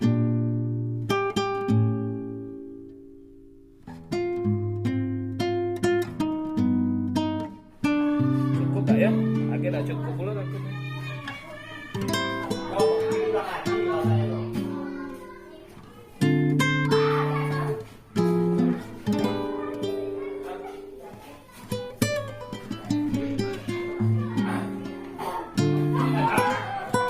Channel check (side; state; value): both; identical; correlation 1.00